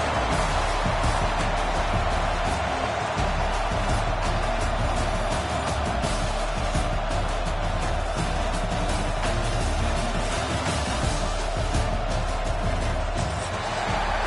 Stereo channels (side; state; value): both; identical; correlation 1.00